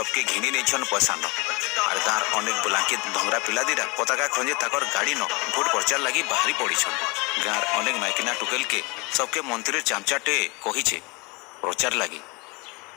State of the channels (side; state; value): right; quieter; 27.2 dB